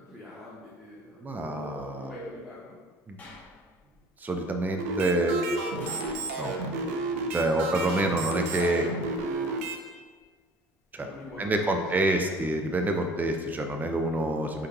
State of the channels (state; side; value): normal; both; correlation 0.49